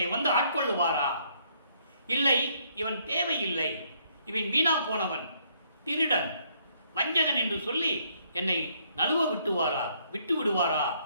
வந்து ஆட்கொள்ளுவாரா? இல்லை, இவன் தேவையில்லை, இவன் வீணா போனவன், திருடன், வஞ்சகன் என்று சொல்லி என்னை நழுவ விட்டு விடுவாரா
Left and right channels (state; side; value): inverted; both; correlation -0.68